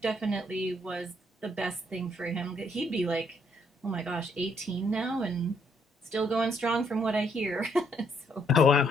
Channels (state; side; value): normal; both; correlation 0.70